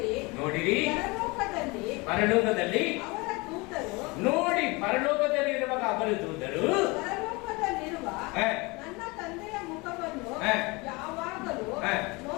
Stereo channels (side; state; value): right; quieter; 25.7 dB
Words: ನೋಡಿರಿ ಪರಲೋಕದಲ್ಲಿ ಅವರ ದೂತರು ನೋಡಿ, ಪರಲೋಕದಲ್ಲಿ ಇರುವಾಗ ಅವರ ದೂತರು ಪರಲೋಕದಲ್ಲಿರುವ ನನ್ನ ತಂದೆಯ ಮುಖವನ್ನು ಯಾವಾಗಲೂ